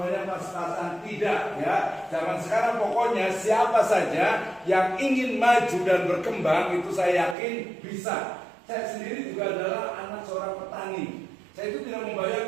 pas-pasan. Tidak ya. Zaman sekarang pokoknya siapa saja yang ingin maju dan berkembang itu saya yakin bisa. Saya sendiri juga adalah anak seorang petani. Saya itu tidak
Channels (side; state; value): left; drops out; at 7.4 s